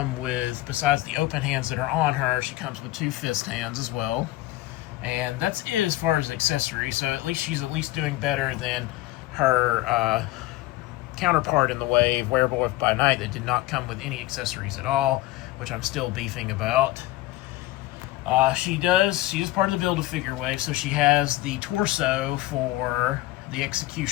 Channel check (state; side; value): quieter; right; 17.1 dB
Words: with, besides the open hands that are on her, she comes with two fist hands as well. And that's it as far as accessories, so she's at least doing better than her counterpart in the wave, Werewolf by Night, that did not come with any accessories at all, which I'm still beefing about. She is part of the Build-A-Figure wave, so she has the torso for the